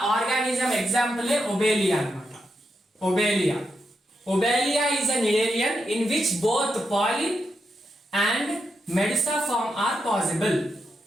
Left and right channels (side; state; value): both; normal; correlation 0.84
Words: ఆర్గానిజం ఎగ్జాంపుల్ ఒబేలియా అన్నమాట. ఒబేలియా is an Nidarian in which both polyp and medusa form are possible.